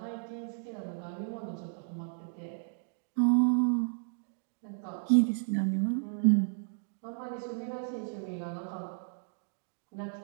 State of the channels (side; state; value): left; silent; digital silence